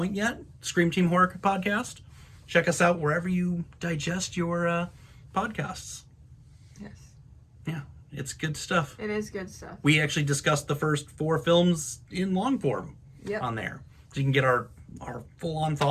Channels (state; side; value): identical; both; correlation 1.00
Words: yet, Scream Team Horror Podcast, check us out wherever you digest your podcasts. Yes. Yeah. It's good stuff. It is good stuff. We actually discussed the first 4 films in long form on there. So you can get our full-on